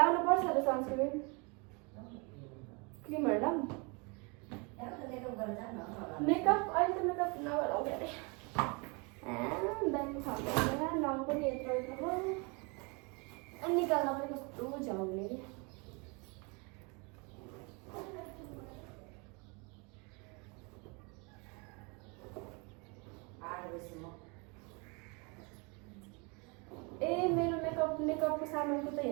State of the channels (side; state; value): left; quieter; 30.8 dB